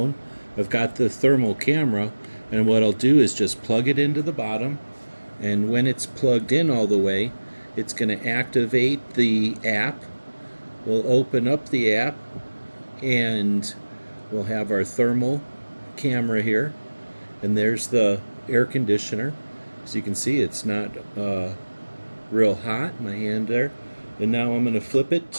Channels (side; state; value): both; inverted; correlation -1.00